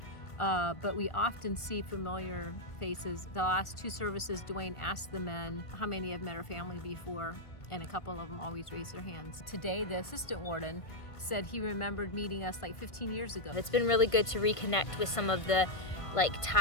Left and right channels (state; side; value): late; right; 1.5 ms